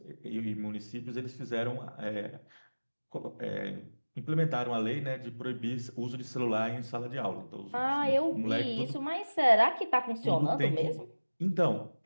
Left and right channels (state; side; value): inverted; both; correlation -1.00